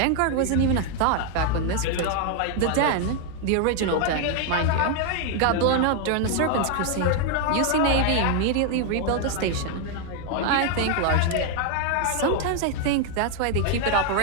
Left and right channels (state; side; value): different; both; correlation 0.01